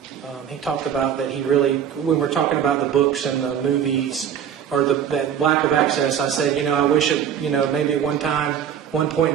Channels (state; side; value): quieter; left; 8.6 dB